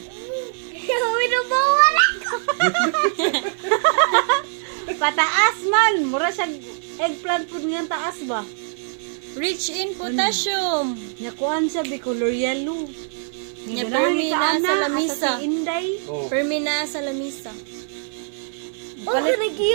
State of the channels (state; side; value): silent; left; 64 dB below the other